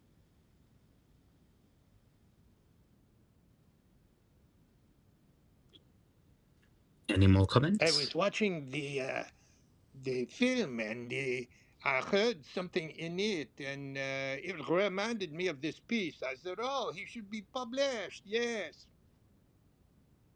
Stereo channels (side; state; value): both; identical; correlation 1.00